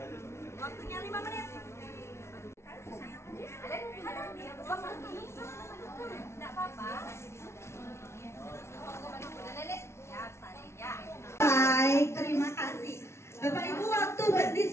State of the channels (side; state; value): right; late; 0.13 ms